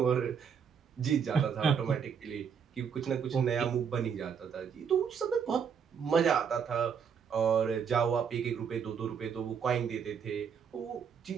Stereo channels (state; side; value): quieter; left; 7.0 dB